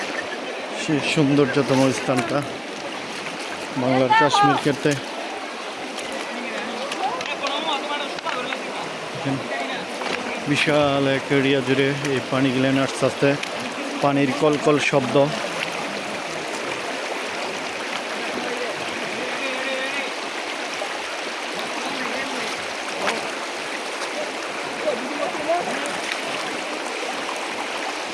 সেই সৌন্দর্যতম স্থানটা বাংলার কাশ্মীর ক্ষেত্রে। বিশাল এক এরিয়া জুড়ে এই পানি গিলেন আস্তে আস্তে, পানির কলকল শব্দ।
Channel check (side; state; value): both; identical; correlation 1.00